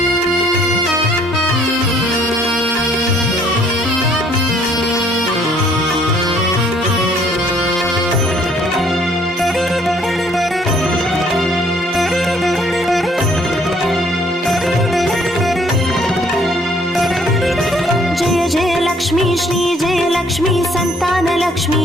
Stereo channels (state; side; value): normal; both; correlation 0.62